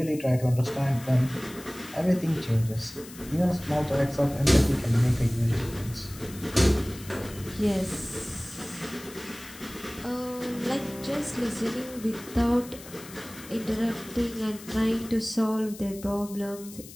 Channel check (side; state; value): left; noise; hiss, 17 dB below the sound